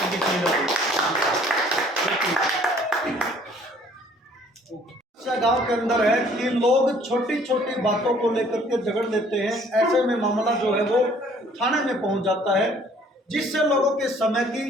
की सुविधा। गांव के अंदर है कि लोग छोटी छोटी बातों को लेकर के झगड़ लेते हैं, ऐसे में मामला जो है वो थाने में पहुंच जाता है, जिससे लोगों के समय की,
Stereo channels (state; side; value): normal; both; correlation 0.57